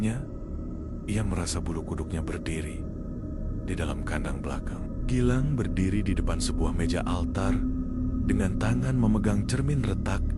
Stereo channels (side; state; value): both; identical; correlation 1.00